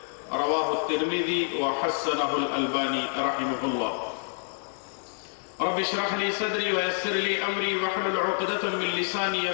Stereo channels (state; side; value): silent; right; digital silence